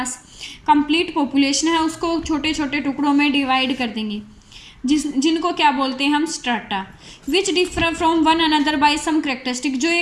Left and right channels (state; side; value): identical; both; correlation 1.00